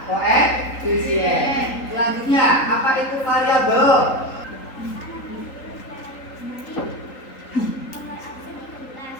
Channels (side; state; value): right; late; 3.8 ms